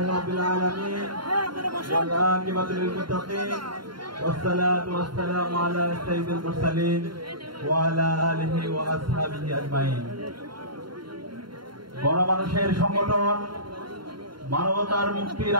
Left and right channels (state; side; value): late; left; 0.72 ms